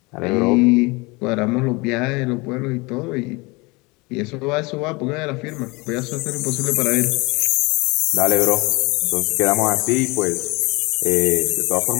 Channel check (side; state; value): right; quieter; 25.7 dB